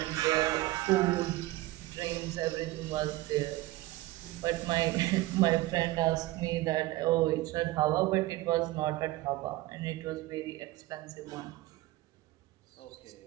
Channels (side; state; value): left; quieter; 18.3 dB